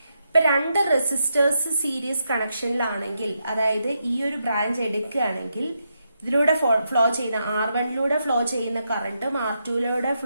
ഇപ്പൊ രണ്ട് റെസിസ്റ്റേഴ്സ് സീരീസ് കണക്ഷനിലാണെങ്കിൽ, അതായത് ഈ ഒരു ബ്രാഞ്ച് എടുക്കുകയാണെങ്കിൽ ഇതിലൂടെ ഫ്ലോ ചെയ്യുന്ന R1 ഫ്ലോ ചെയ്യുന്ന കറന്റും R2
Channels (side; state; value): both; inverted; correlation -0.82